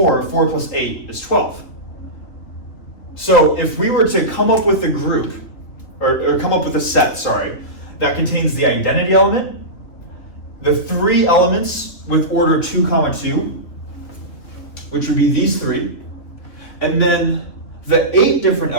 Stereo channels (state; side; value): late; right; 3.4 ms